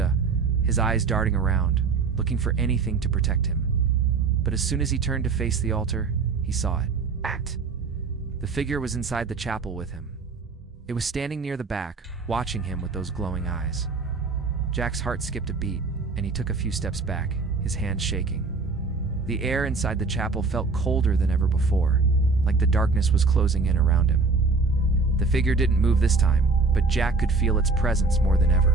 His eyes darting around, looking for anything to protect him. But as soon as he turned to face the altar, he saw it. The figure was inside the chapel with him. It was standing near the back, watching him with those glowing eyes. Jack's heart skipped a beat, and he took a few steps back, his hands shaking. The air inside the chapel felt colder than ever before, like the darkness was closing in around him. The figure didn't move this time, but Jack could feel its presence more than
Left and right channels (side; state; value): left; quieter; 4.3 dB